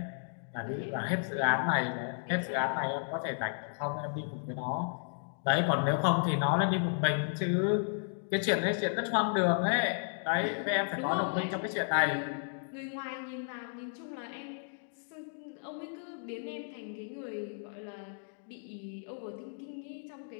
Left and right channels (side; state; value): right; silent; digital silence